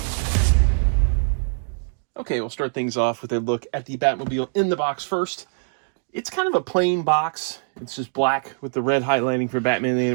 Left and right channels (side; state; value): left; silent; digital silence